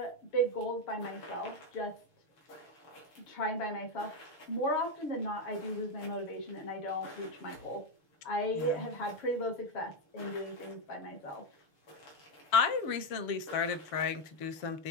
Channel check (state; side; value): late; right; 6.6 ms